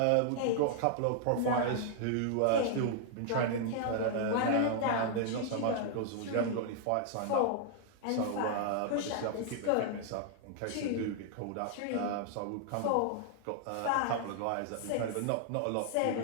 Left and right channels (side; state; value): both; different; correlation -0.01